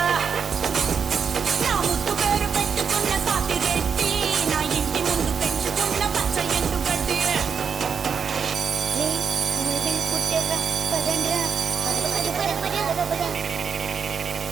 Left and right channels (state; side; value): quieter; left; 6.5 dB